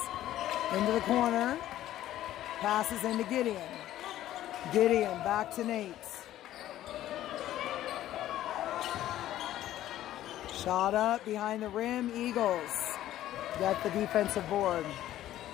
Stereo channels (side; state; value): right; quieter; 13.3 dB